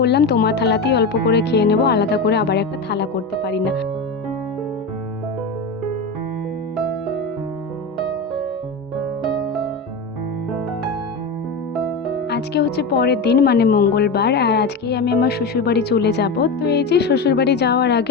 বললাম তোমার থালাতেই অল্প করে খেয়ে নেব, আলাদা করে আবার একটা থালা করতে পারি না। আজকে হচ্ছে পরের দিন, মানে মঙ্গলবার, আর আজকেই আমি আমার শ্বশুরবাড়ি চলে যাব। তো এই যে শ্বশুরবাড়ি যাওয়ার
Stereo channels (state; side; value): quieter; right; 3.7 dB